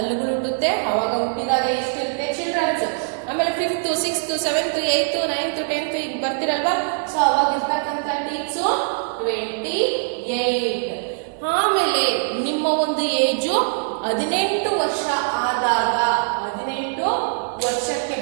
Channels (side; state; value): left; silent; digital silence